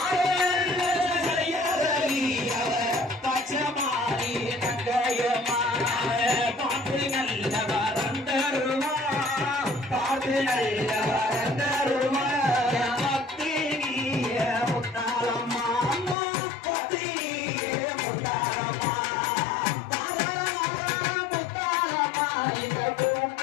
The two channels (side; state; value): right; drops out; at 16.2 s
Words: பச்சமாரி தங்கையம்மா பாட்டு நல்ல வரந்தருமா பாட்டு நல்ல வரந்தருமா பக்தி முத்தாரம்மா பக்தி முத்தாரம்மா முத்தாரம்மா இந்த